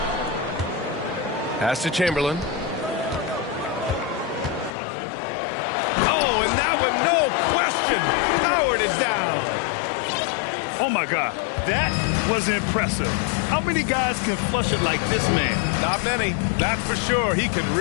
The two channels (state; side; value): drops out; right; at 4.7 s